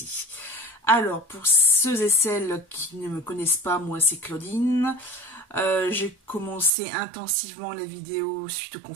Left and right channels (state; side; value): drops out; left; at 6.7 s